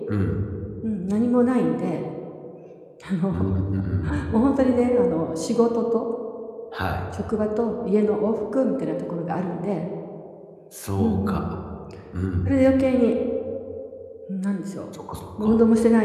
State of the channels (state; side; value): identical; both; correlation 1.00